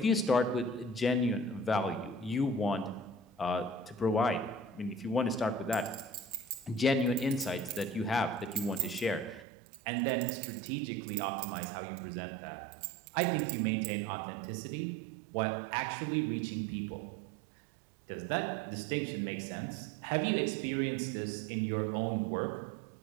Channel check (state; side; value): drops out; left; at 9.5 s